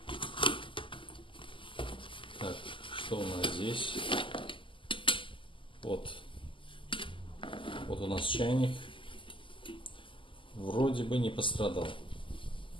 Так, что у нас здесь? Вот у нас чайник. Вроде бы не пострадал.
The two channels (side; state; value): right; late; 0.25 ms